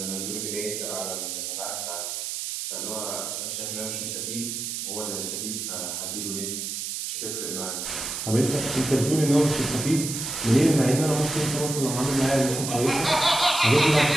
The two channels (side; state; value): right; noise; hiss, 4 dB below the sound